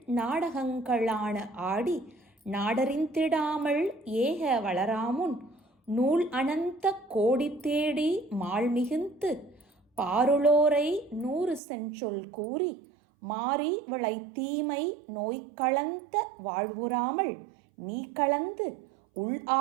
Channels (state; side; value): drops out; left; at 11.6 s